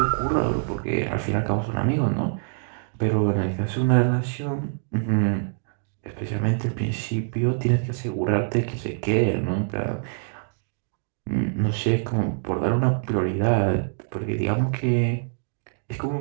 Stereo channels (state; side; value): silent; left; digital silence